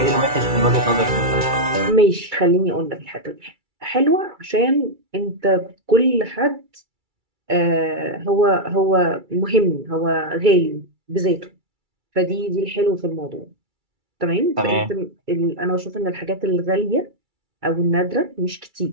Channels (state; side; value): late; left; 2.3 ms